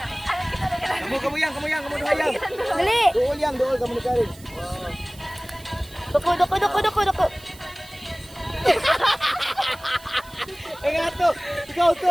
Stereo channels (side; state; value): right; noise; hiss, 22 dB below the sound